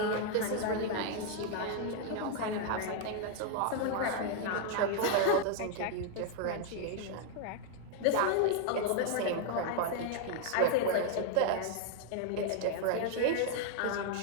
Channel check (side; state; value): both; different; correlation 0.00